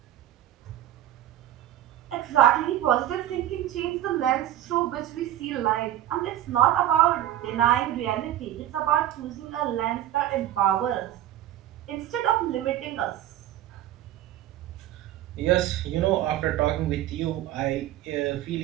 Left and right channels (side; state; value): left; quieter; 12.7 dB